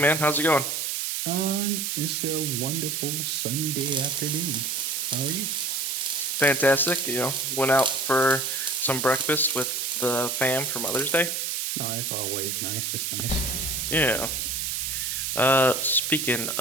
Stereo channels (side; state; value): right; noise; hiss, 1 dB below the sound